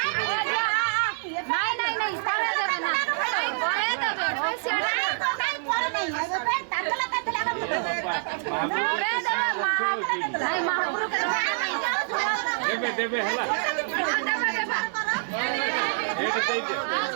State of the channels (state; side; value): silent; left; 61 dB below the other